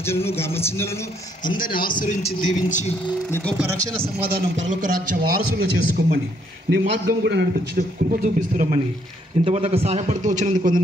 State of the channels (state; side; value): normal; both; correlation 0.70